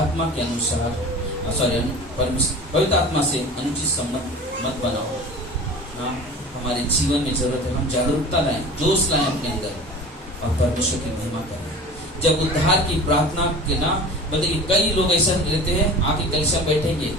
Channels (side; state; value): both; normal; correlation 0.38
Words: के अनुसार पवित्र आत्मा से अनुचित संबंध मत बनाओ ना। हमारे जीवन में जरूरत है हम जागरूकता लाएं, जोश लाएं अपने अंदर और परमेश्वर की महिमा करें। जब उद्धार की प्रार्थना के ना बताइए, कई लोग ऐसा रहते हैं आके कलीसिया बैठेंगे,